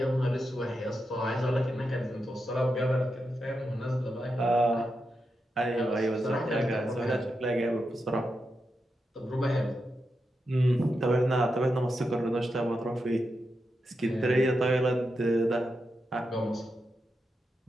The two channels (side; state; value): both; normal; correlation 0.87